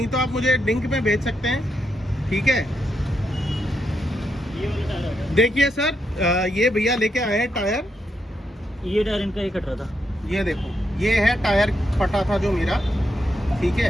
तो आप मुझे लिंक में भेज सकते हैं, ठीक है। देखिए सर, ये भैया लेके आए हैं टायर। ये टायर इनका ही कट रहा था। ये देखो, ये है टायर फटा था जो मेरा, ठीक है।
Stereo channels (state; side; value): normal; both; correlation 0.81